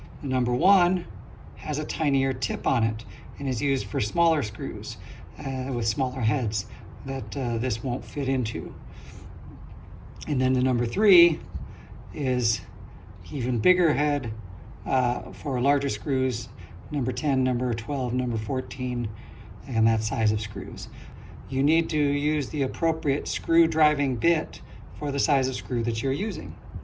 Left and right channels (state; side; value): identical; both; correlation 1.00